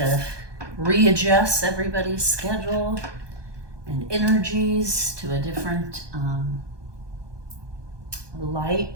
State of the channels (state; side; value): late; left; 1.2 ms